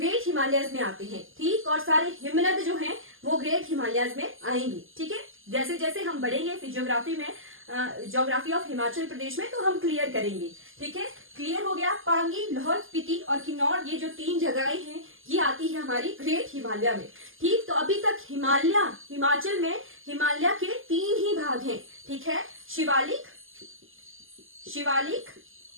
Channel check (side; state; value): left; late; 0.59 ms